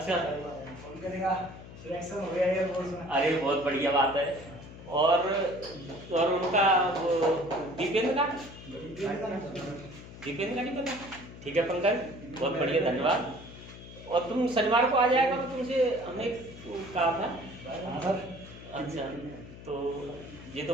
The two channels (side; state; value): left; noise; hum, 15 dB below the sound